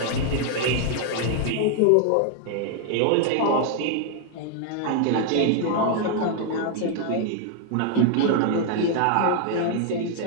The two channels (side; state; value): both; different; correlation 0.00